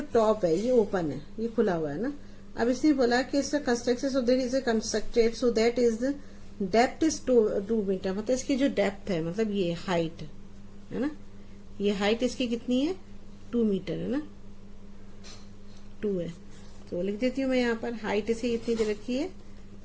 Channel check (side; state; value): both; identical; correlation 1.00